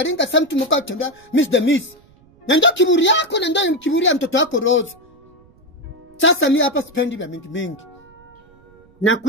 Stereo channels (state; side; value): noise; right; rumble, 29 dB below the sound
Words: sasa mtu mkao tembea miss the miss. Na ndio kiburi yako na ndio kiburi ya mtoto wako Rose. Sasa mimi hapa sipendi vya mingi.